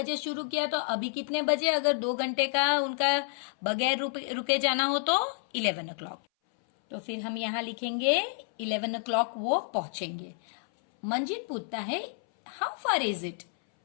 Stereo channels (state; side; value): silent; right; 58 dB below the other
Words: शुरू किया तो अभी कितने बजे, अगर 2 घंटे का उनका बगैर रुके जाना हो तो 11 o'clock। तो फिर हम यहाँ लिखेंगे 11 o'clock वो पहुंचेंगे। मंजित पूछता है हाउ फार इज इट,